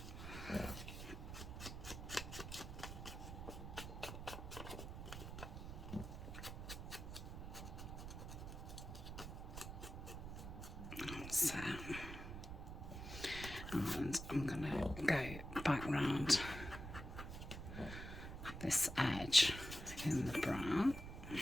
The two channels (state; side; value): noise; right; rumble, 8 dB below the sound